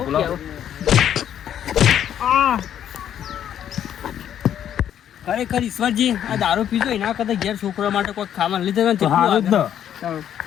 ખરેખર ઈશ્વરજી આ દારૂ પીજો એના કરતા ઘેર છોકરા માટે કોઈ ખાવાનું લીધે તો હારું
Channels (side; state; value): right; quieter; 10.0 dB